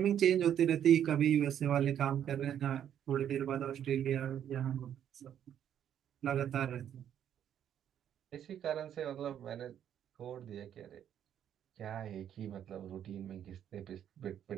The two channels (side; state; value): left; quieter; 9.8 dB